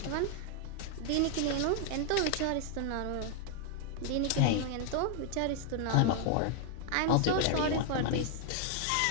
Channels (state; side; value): different; both; correlation 0.00